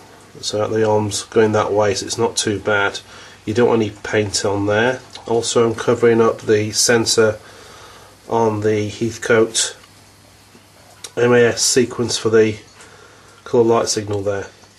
so that the arm's going that way, so it's not too bad. You don't want any paint on there. Also I'm covering up the sensor on the Heathcote MAS sequence for the colour light signal there.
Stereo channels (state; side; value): identical; both; correlation 1.00